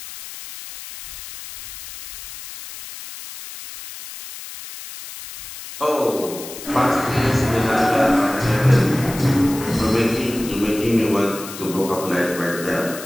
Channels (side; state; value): left; noise; hiss, 12 dB below the sound